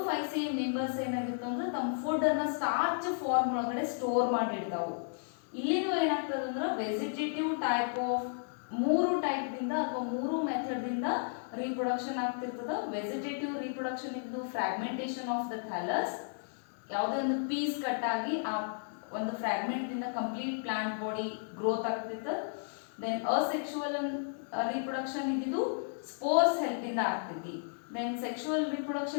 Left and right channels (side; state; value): right; silent; digital silence